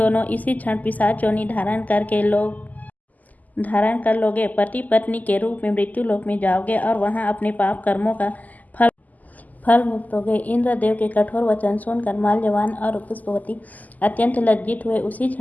इसी क्षण पिशाच योनि धारण कर लोगे। पति पत्नी के रूप में मृत्यु लोक में जाओगे और वहां अपने पाप कर्मों का फल भुगतोगे। इंद्रदेव के कठोर वचन सुनकर माल्यवान और पुष्पवती अत्यंत लज्जित हुए। उसी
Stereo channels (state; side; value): late; right; 0.080 ms